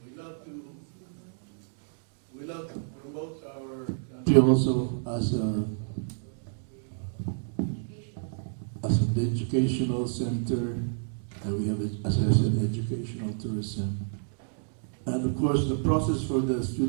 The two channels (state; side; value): silent; left; digital silence